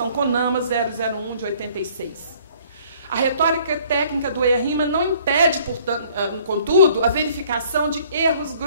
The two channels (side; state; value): both; inverted; correlation -0.58